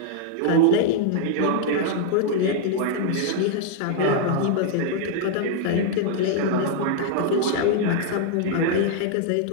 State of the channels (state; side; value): different; both; correlation 0.00